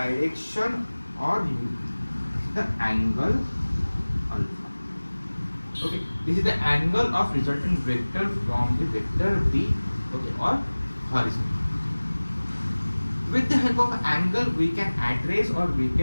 or the angle alpha. Okay, this is the angle of resultant vector from the vector B, okay, or horizon. With the help of angle, we can address or we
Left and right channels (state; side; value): inverted; both; correlation -1.00